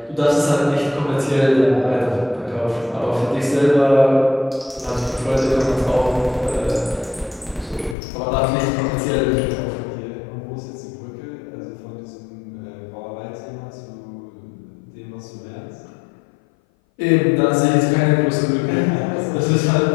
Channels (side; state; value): right; drops out; at 8.0 s